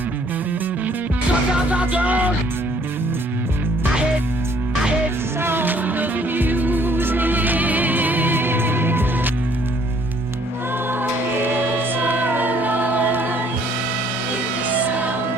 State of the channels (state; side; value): normal; both; correlation 0.62